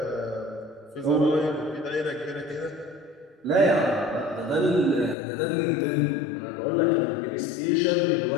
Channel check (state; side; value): drops out; right; at 5.2 s